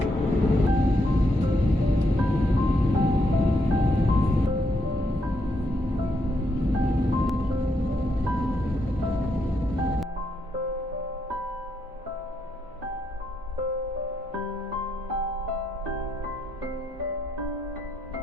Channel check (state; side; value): normal; both; correlation 0.78